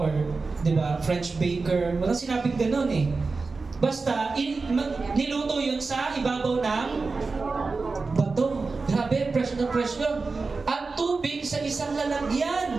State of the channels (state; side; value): quieter; left; 4.1 dB